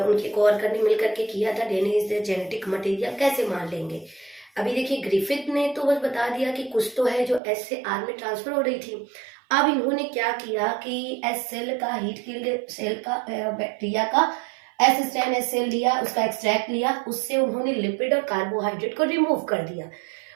कोवर्कर ने मिलकर के किया था। DNA is the genetic material कैसे मान लेंगे। अभी देखिए ग्रिफिथ ने तो बस बता दिया कि कुछ तो है जो एस से आर में ट्रांसफर हो रही थी। अब इन्होंने क्या किया कि एस सेल का, हीट किल्ड सेल का, बैक्टीरिया का एस स्ट्रेन एस सेल लिया, उसका एक्सट्रैक्ट लिया, उससे उन्होंने लिपिड और कार्बोहाइड्रेट को रिमूव कर दिया।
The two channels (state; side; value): drops out; left; at 7.4 s